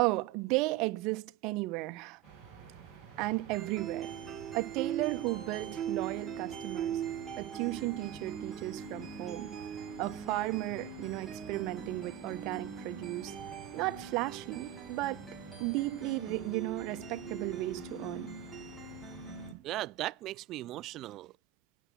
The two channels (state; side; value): quieter; left; 13.8 dB